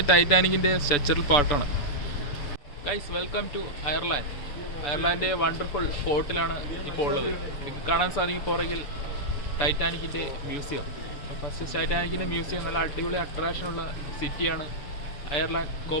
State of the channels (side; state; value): right; late; 6.9 ms